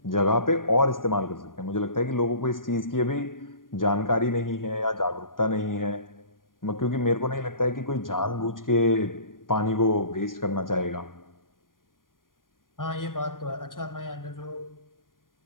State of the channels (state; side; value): late; right; 0.90 ms